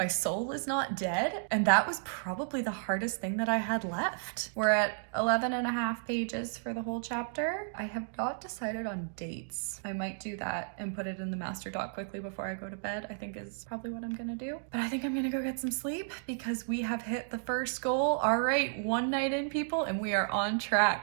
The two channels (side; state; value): left; silent; digital silence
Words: soul is not dead. And that was probably the hardest thing that I had left. We're at 11 and a half pages for the whole chapter. I have not decided on dates. I might do that and put it in the master doc quickly before I go to bed, I think is probably what I'm gonna do. But I think I'm gonna go get some sleep because we have hit the first goal. All right, 1 night in, people, and we are on